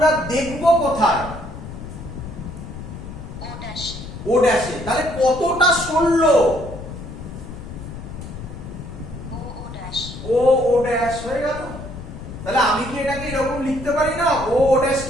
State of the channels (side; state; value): left; noise; rumble, 11 dB below the sound